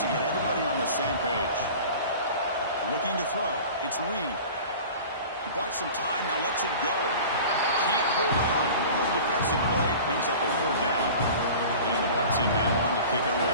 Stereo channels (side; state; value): both; inverted; correlation -0.39